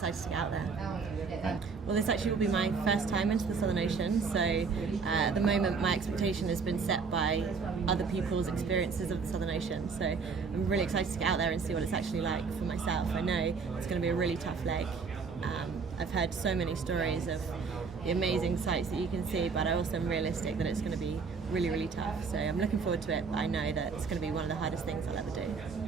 to get out there. Well, this actually will be my first time into the Southern Ocean, so at the moment my expectation has been set by other people's experiences of the Southern Ocean, so I'm really excited to get out there and see what it's actually like for myself. I know it's going to be a really tough leg. I've heard so many stories of the amazing sights that you can see, but I also am realistic that it's going to be really, really tough. So I'm looking forward to it, but I know that it's going to be one of the hardest things I'll ever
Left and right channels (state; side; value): quieter; left; 5.2 dB